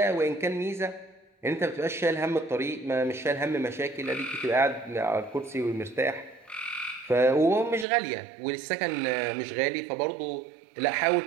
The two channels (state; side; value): drops out; left; at 7.9 s